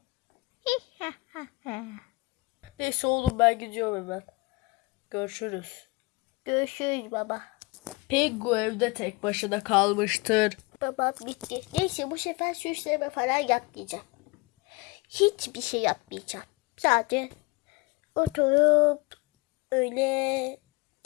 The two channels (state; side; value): quieter; right; 23.3 dB